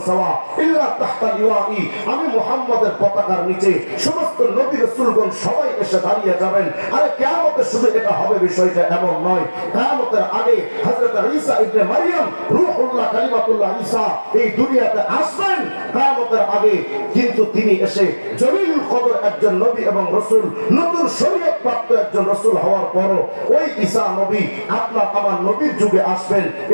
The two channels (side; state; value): both; inverted; correlation -1.00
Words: সাওয়া ইল্লা তাহতা লিওয়াই। আমি মুহাম্মদের পতাকার নিচে সমস্ত নবী রাসূলগণ সবাই এসে দাঁড়িয়ে যাবেন। আরে কিয়ামতে শুধু এটা হবে বিষয়টা এমন নয়, কিয়ামতের আগে হযরত ঈসা ইবনে মারইয়াম রূহুল্লাহ কালিমাতুল্লাহ ঈসা এই দুনিয়াতে আসবেন কিয়ামতের আগে। কিন্তু তিনি এসে জলিলুল কদর একজন নবী এবং রাসূল, নতুন শরীয়ত প্রাপ্ত একজন রাসূল হওয়ার পরও ওই ঈসা নবী আপনার আমার নবীর যুগে আসবেন।